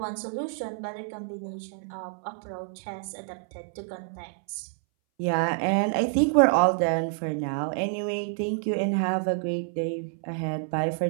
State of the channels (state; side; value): silent; left; 59 dB below the other